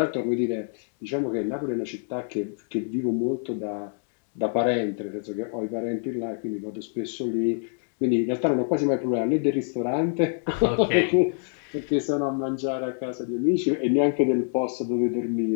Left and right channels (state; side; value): silent; right; digital silence